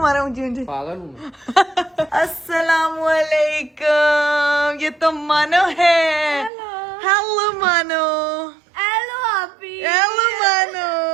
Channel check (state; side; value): drops out; left; at 6.5 s